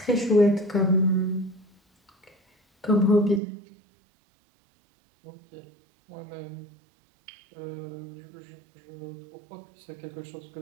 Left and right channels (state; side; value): drops out; left; at 3.4 s